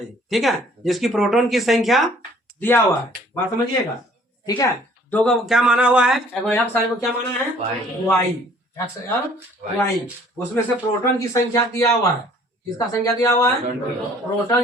ठीक है। जिसकी प्रोटॉन की संख्या दिया हुआ है, बात समझिएगा, ठीक है। दो का क्या माना हुआ है, एक्स को क्या माना है वाई, एक्स और वाई, उसमें से प्रोटॉन की संख्या दिया हुआ है, किसका संख्या दिया हुआ है,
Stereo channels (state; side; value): normal; both; correlation 0.56